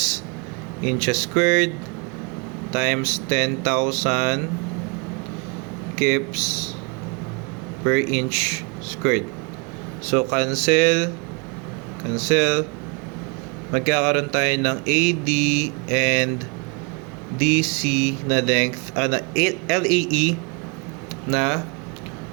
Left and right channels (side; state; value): left; quieter; 31.9 dB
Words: inches squared times 10,000 kips per inch squared. So, cancel. Magkakaroon tayo ng AD and DC na length, na LAE na